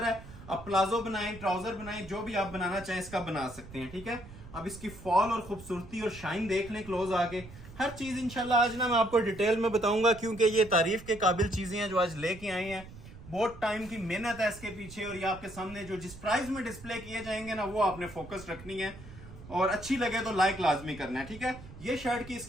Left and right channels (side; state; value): right; noise; rumble, 16 dB below the sound